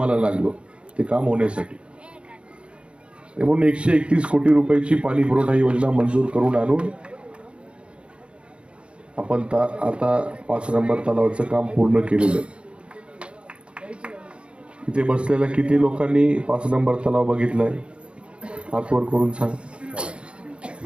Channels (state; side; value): late; left; 0.058 ms